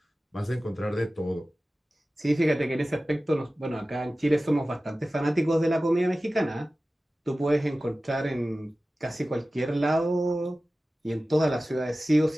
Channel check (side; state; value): both; normal; correlation 0.96